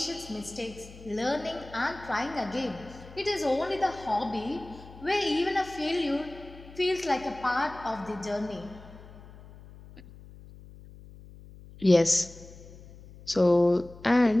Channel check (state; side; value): noise; left; hum, 19 dB below the sound